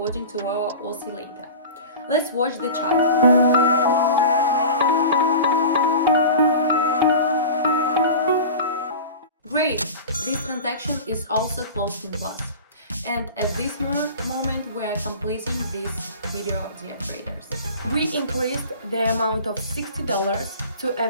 to our oscillator. Let's watch the chart. Great! This transaction is also closed in plus. And at this moment we are completing this video, dear traders. We increased the amount of $60 to a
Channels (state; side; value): inverted; both; correlation -0.35